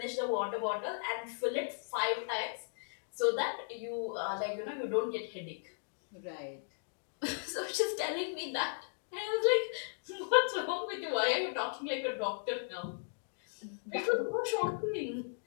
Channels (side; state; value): right; silent; digital silence